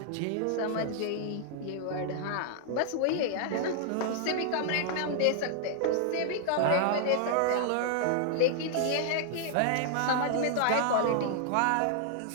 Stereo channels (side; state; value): both; different; correlation -0.01